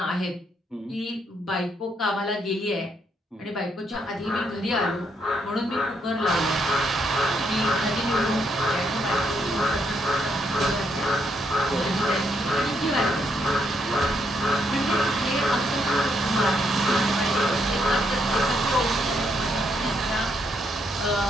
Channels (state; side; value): normal; both; correlation 0.75